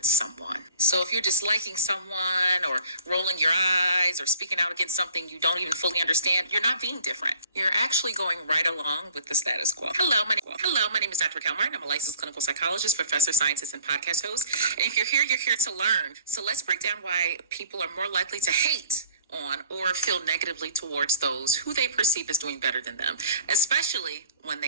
someone? So if you're disliking someone or rolling your eyes or speaking out against something you don't even fully understand, you're not being different. You're actually going right along with the status quo. Hello, my name is Dr. Kelmer, and I'm a licensed clinical psychologist, professor, scientist, and podcast host. And if you're here to learn. So let's break down why people are more likely to hate on or feel negatively towards those who they perceive as doing better than them, especially when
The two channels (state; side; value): inverted; both; correlation -0.50